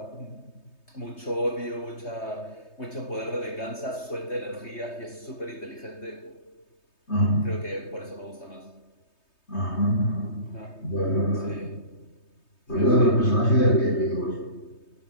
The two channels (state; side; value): late; right; 3.2 ms